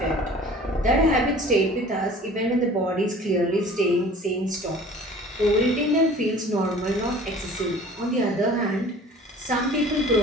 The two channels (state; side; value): normal; both; correlation 0.46